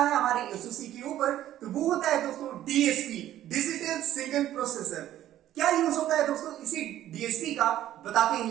हमारे एसओसी के ऊपर, तो वो होता है दोस्तों डीएसपी, डिजिटल सिग्नल प्रोसेसर। क्या यूज होता है दोस्तों इसी डीएसपी का, बताते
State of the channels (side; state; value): left; quieter; 12.7 dB